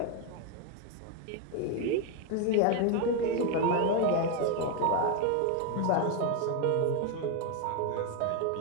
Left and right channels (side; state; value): both; different; correlation 0.01